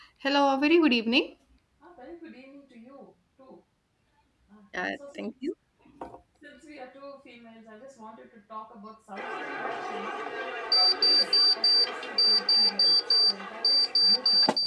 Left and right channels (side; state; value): both; identical; correlation 1.00